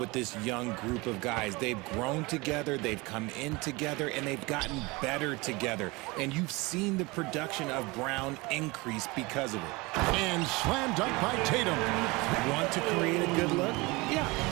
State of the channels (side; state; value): left; quieter; 24.2 dB